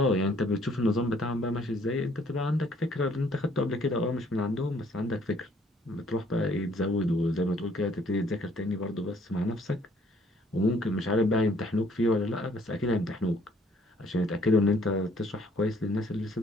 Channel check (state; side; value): normal; both; correlation 0.62